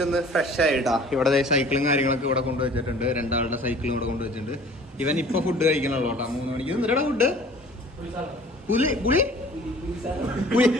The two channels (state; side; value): normal; both; correlation 0.49